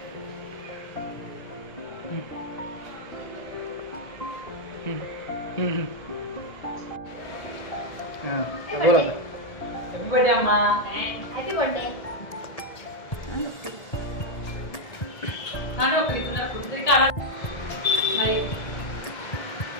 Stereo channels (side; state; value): right; late; 1.7 ms